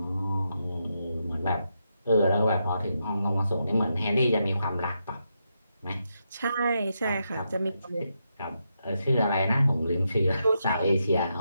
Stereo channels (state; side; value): inverted; both; correlation -0.83